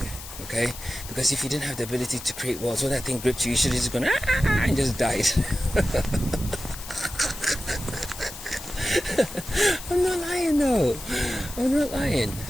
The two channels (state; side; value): noise; left; hiss, 13 dB below the sound